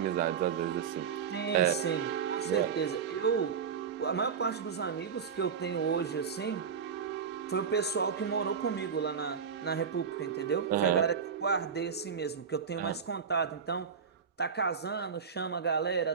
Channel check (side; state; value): left; quieter; 6.6 dB